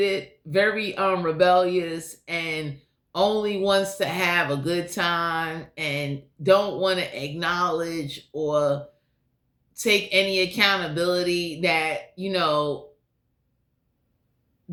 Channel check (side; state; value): both; identical; correlation 1.00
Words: very rebellious, and only wants to have a good time and don't want to acknowledge or take any accountability that,